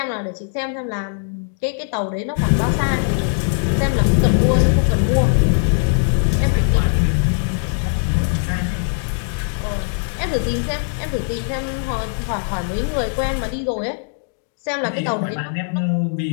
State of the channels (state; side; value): silent; right; 66 dB below the other